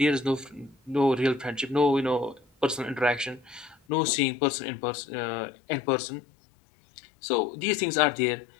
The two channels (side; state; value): right; drops out; at 3.8 s